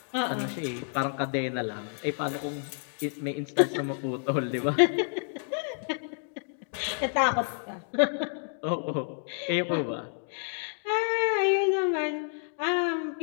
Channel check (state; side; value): silent; right; 58 dB below the other